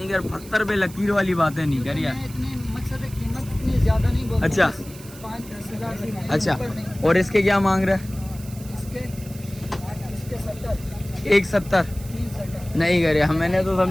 कर, पत्थर पे लकीर वाली बातें नहीं कर यार। इतनी मकसद है, कीमत इतनी ज्यादा नहीं बोलते। अच्छा। 5-10 हजार से अच्छा ऊपर नहीं। और इसके क्या मांग रहा है? इसके 70 170 370 नहीं कर यार, मैंने तो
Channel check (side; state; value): right; noise; hiss, 19 dB below the sound